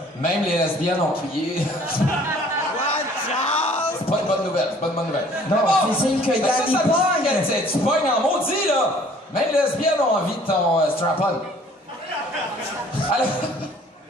Même les lesbiennes ont crié. C'est pas une bonne nouvelle, c'est pas une bonne nouvelle. Non, c'est signe que Yann il pogne. Tu pognes en maudit, là. Même les lesbiennes ont envie de ton strap-on. Alors...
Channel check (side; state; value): both; normal; correlation 0.55